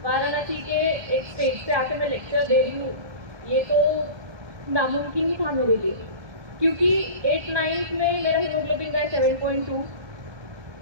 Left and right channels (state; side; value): late; left; 1.7 ms